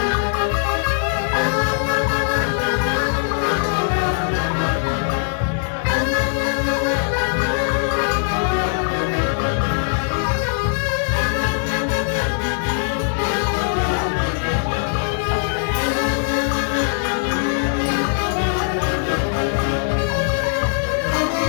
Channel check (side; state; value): right; silent; digital silence